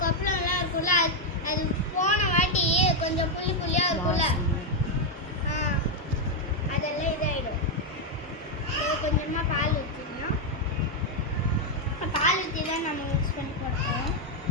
கொப்பளம்லாம் இருக்கும்ல, அது போன வாட்டி கொஞ்சம் புள்ளி புள்ளியாக இருக்கும்ல, அதெல்லாம் இதாகிடும். கொஞ்சமாக பால் ஊற்றிக்கலாம். பால் ஊற்றி தான் நம்ம மிக்ஸ் பண்ணி போட்டோம்.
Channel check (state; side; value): normal; both; correlation 0.01